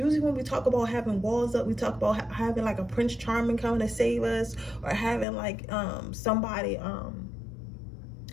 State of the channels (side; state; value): right; drops out; at 5.2 s